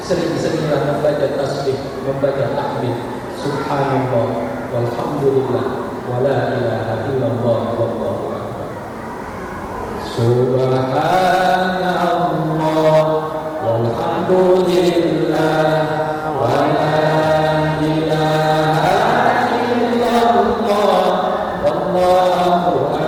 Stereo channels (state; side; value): identical; both; correlation 1.00